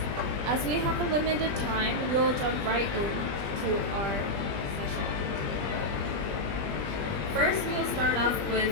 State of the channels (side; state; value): left; late; 20 ms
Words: As we have a limited time, we will jump right into our session. First, we will start off with